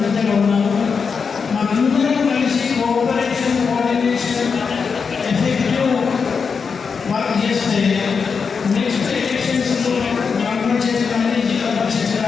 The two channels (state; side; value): quieter; right; 5.6 dB